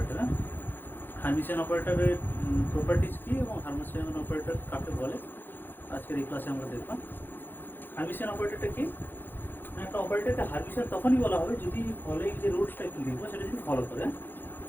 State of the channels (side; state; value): right; late; 0.096 ms